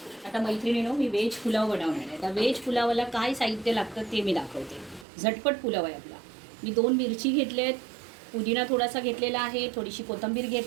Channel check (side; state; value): left; drops out; at 5.1 s